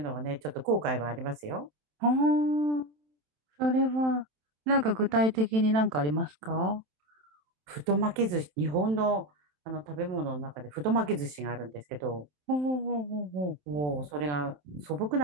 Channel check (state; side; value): late; left; 27 ms